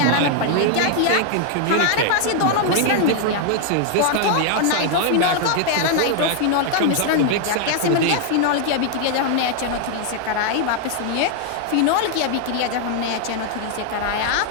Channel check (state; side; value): different; both; correlation 0.00